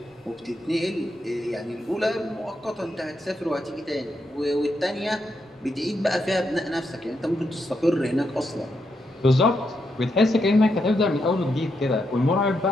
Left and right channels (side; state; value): both; normal; correlation 0.82